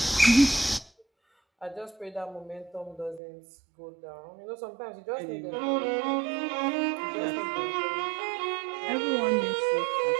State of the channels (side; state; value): left; drops out; at 3.2 s